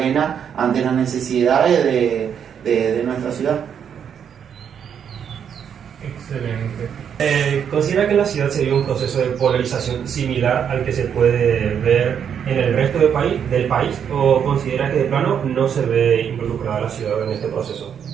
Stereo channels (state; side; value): quieter; left; 8.1 dB